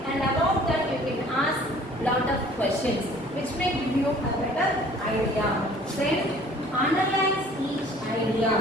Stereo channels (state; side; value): normal; both; correlation 0.52